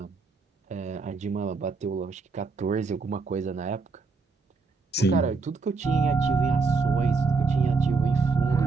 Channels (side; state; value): left; quieter; 4.4 dB